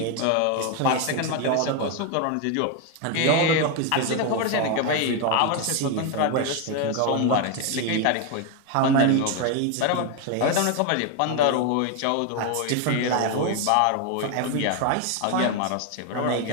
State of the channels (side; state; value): both; different; correlation 0.01